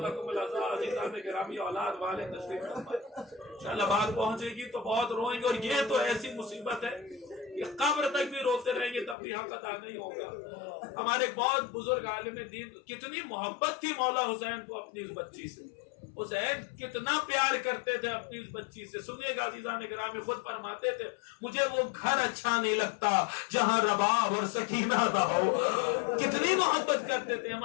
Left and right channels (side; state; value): right; drops out; at 9.2 s